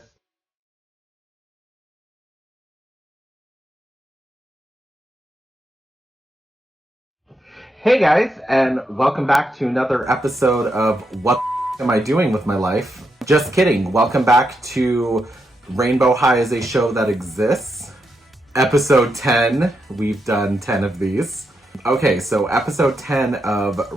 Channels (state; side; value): normal; both; correlation 0.83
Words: Hey guys, and welcome back to another episode of What Am I Doing With My Life? Just kidding. Welcome back to Rainbow High is a Show That Exists. Episode 10. We've done 10 of these. Okay, so episode 10